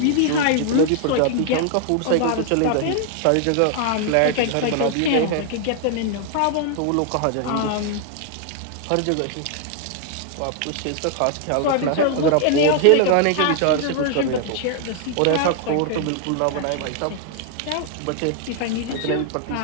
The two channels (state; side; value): different; both; correlation 0.00